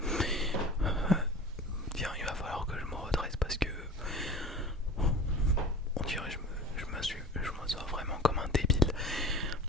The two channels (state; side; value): normal; both; correlation 0.37